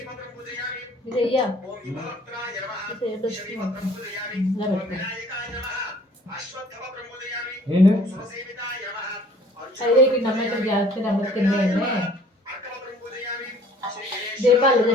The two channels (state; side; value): normal; both; correlation 0.54